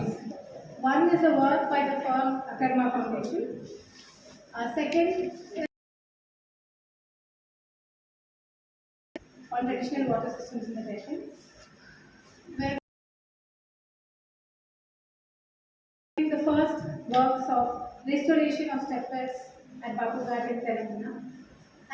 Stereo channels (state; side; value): identical; both; correlation 1.00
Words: One is a work by the firm Akarma Foundation. Second is on traditional water systems in the nation, where the first works of restoration of stepwells at Babughat in Telangana,